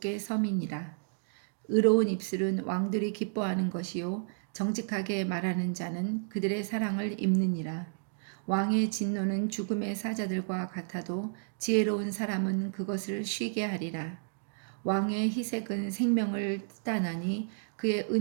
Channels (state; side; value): silent; left; digital silence